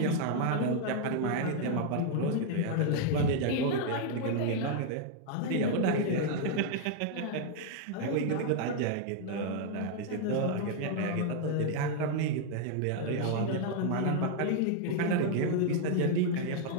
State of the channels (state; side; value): different; both; correlation 0.00